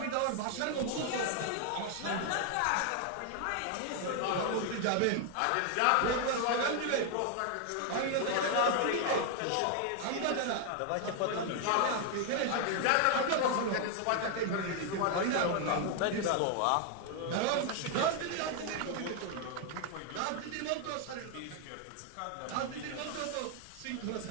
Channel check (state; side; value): different; both; correlation 0.00